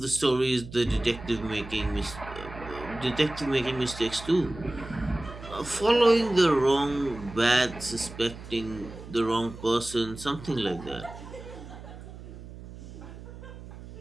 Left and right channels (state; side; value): noise; right; hum, 14 dB below the sound